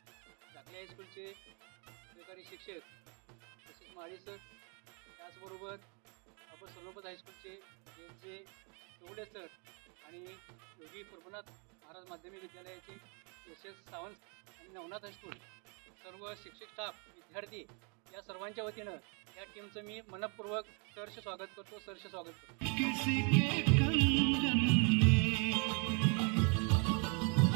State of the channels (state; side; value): quieter; left; 35.9 dB